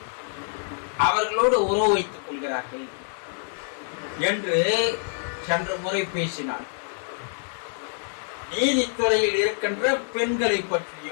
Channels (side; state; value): right; silent; 58 dB below the other